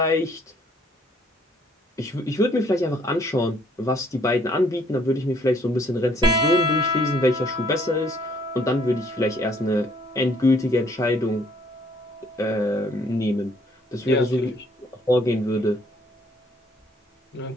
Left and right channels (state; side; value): normal; both; correlation 0.63